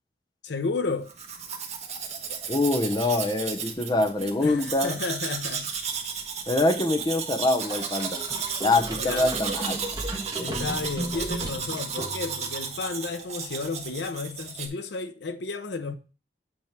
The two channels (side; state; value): both; normal; correlation 0.44